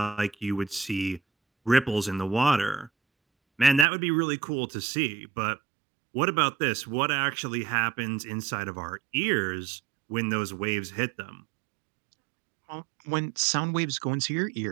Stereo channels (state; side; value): drops out; left; at 3.9 s